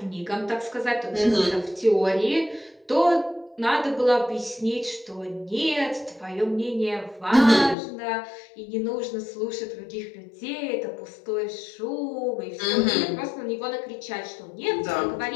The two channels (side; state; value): right; drops out; at 7.8 s